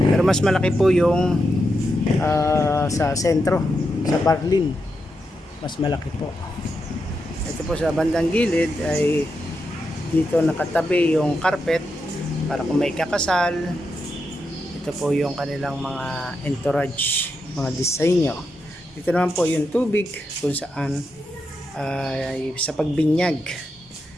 Pero mas malaki po yung sa sentro, sa Barlin. Mas malaki po. Ito po sa bandang gilid ay dito nakatabi yung carpet para kung may kakasal. Ito po yung kanilang mga entourage, mga disenyo. Dito naman po yung tubig kung saan ay sa pagbinyag.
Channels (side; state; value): both; normal; correlation 0.85